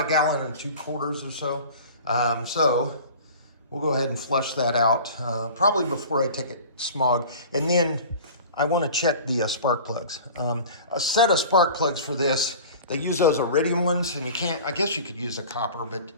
1 gallon and 2 quarters or so. So we'll go ahead and flush that out, probably before I take it smog. And then I want to check the spark plugs. A set of spark plugs for this, they use those iridium ones, and you can't, I guess you could use a copper, but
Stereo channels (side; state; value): both; inverted; correlation -0.40